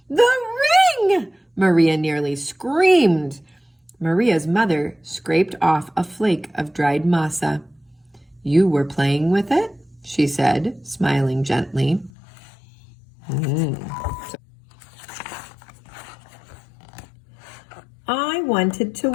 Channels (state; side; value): drops out; right; at 12.1 s